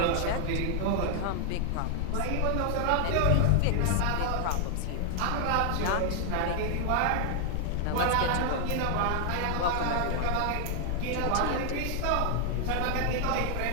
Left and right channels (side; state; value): both; different; correlation 0.00